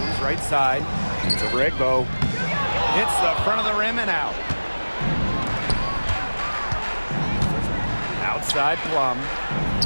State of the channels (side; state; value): both; inverted; correlation -1.00